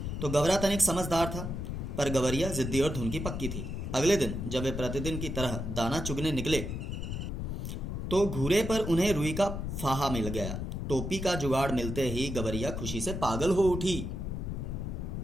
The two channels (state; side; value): noise; left; rumble, 4 dB below the sound